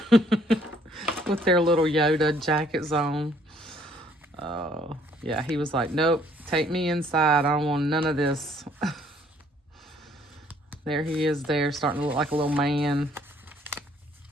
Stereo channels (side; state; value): both; normal; correlation 0.63